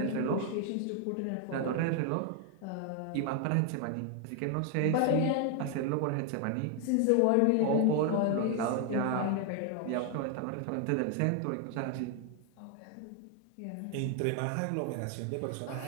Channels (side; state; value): both; different; correlation 0.00